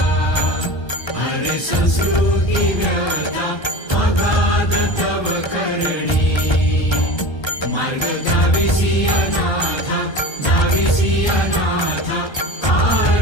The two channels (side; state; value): right; late; 1.3 ms